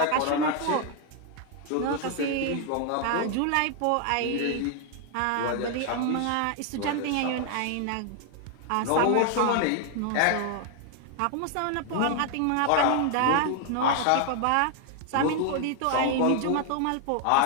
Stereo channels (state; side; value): different; both; correlation 0.00